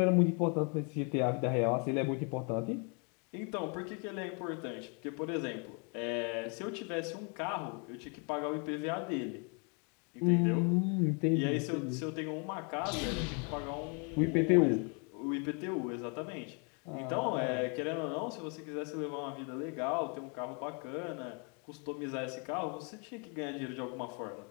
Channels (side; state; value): right; quieter; 36.8 dB